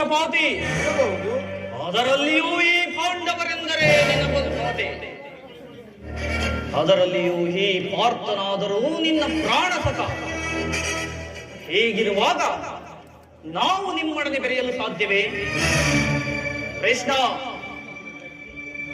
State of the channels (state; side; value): identical; both; correlation 1.00